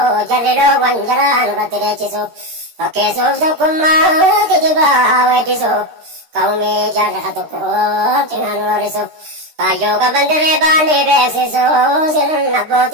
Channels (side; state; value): left; late; 13 ms